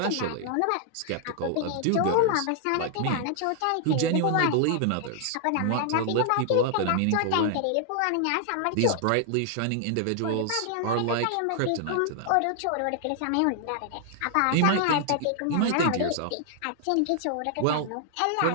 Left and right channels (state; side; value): different; both; correlation 0.00